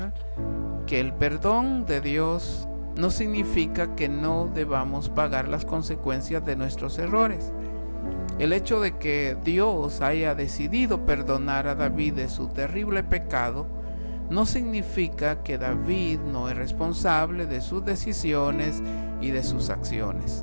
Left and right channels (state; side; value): inverted; both; correlation -1.00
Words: que el perdón de Dios no significa que no debamos pagar las consecuencias de nuestros errores. El hecho de que Dios haya decidido perdonar a David de su terrible pecado no significa que David no es responsable de sus decisiones y de sus acciones.